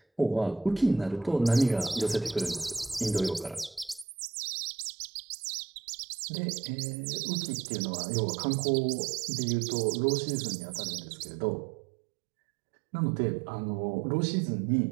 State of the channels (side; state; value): left; drops out; at 4.0 s